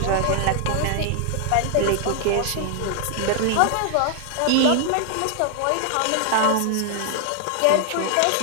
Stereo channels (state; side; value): different; both; correlation 0.00